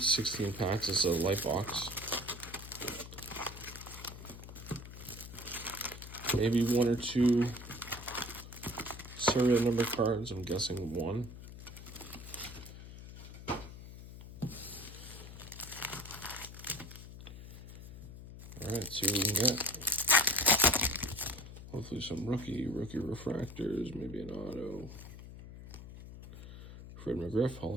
16 packs. It's a Lite box. Maybe one or two serial number cards. I'm guessing one. Alright, see what we can get. Hopefully some rookie refractors, maybe an auto. Fred McGriff, Hall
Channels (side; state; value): left; noise; hum, 13 dB below the sound